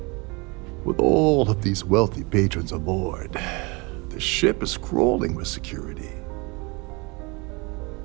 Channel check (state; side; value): quieter; left; 27.9 dB